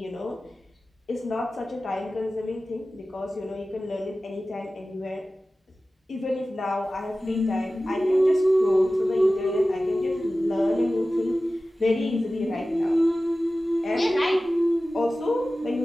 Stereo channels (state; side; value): normal; both; correlation 0.96